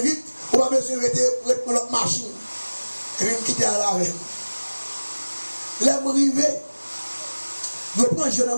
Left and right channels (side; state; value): both; inverted; correlation -1.00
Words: on va besoin de prendre notre machine. Et puis je quitter à la veille. Là, je arrive, je prends un jeune